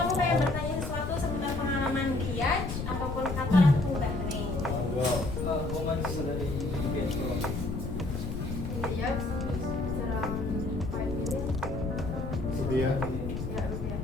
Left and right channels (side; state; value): left; noise; rumble, 5 dB below the sound